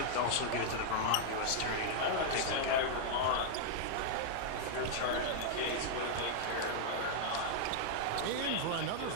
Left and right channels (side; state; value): both; different; correlation -0.01